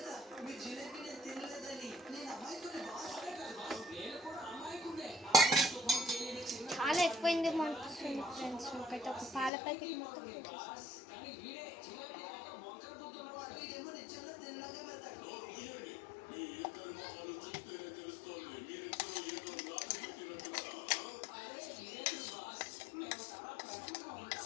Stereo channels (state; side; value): drops out; right; at 9.5 s